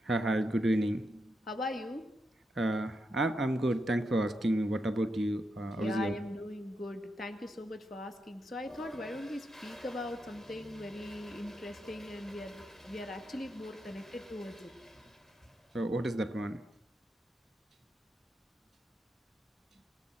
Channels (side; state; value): both; normal; correlation 0.84